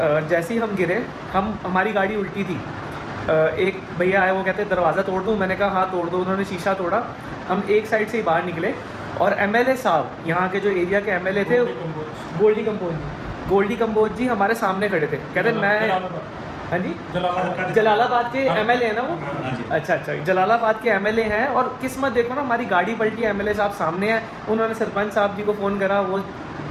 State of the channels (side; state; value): both; identical; correlation 1.00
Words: जैसे ही हम गिरे, हमारी गाड़ी उल्टी थी। एक भैया आए, वो कहते हैं दरवाज़ा तोड़ दूँ। मैंने कहा हाँ तोड़ दो। उन्होंने शीशा तोड़ा। हम एक साइड से ही बाहर निकले, और एमएलए साहब, यहाँ के जो एरिया के एमएलए थे, गोल्डी कंबोज जी हमारे सामने खड़े थे। कहते मैं, हाँ जी, जलालाबाद के एमएलए हैं ना वो। अच्छा, जलालाबाद के एमएलए हैं। और किस्मत देखो ना, हमारी गाड़ी पलटी, एमएलए साहब सामने हैं। उन्होंने सरपंच साहब जी को फ़ोन करा, वो